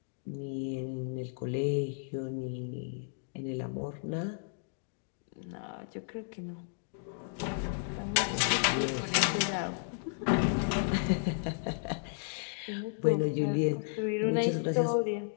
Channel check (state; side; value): silent; right; digital silence